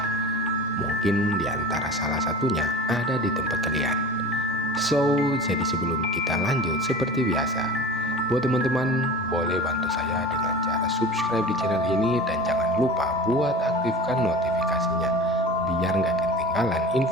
Mungkin di antara salah satunya ada di tempat kalian. Jadi sebelum kita lanjut, seperti biasa, buat teman-teman boleh bantu saya dengan cara subscribe di channel ini, dan jangan lupa buat aktifkan notifikasinya biar nggak ketinggalan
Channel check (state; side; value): normal; both; correlation 0.36